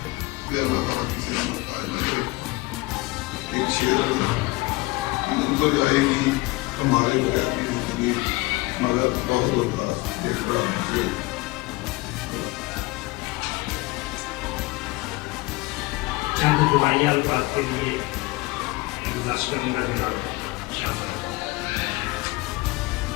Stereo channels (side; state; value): right; quieter; 22.4 dB